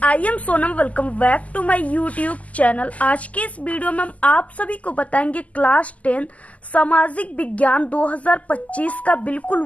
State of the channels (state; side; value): late; right; 0.072 ms